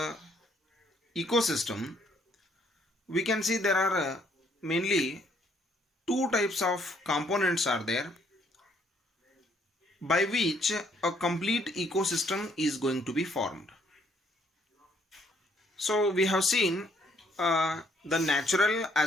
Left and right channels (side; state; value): both; normal; correlation 0.67